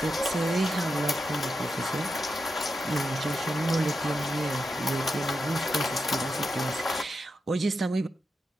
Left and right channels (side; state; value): both; normal; correlation 0.87